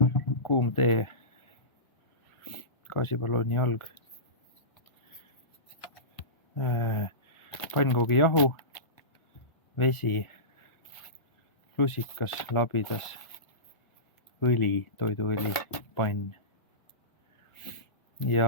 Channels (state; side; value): late; right; 1.5 ms